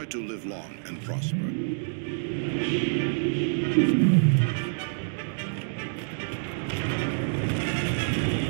to live long and prosper.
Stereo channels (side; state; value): left; silent; digital silence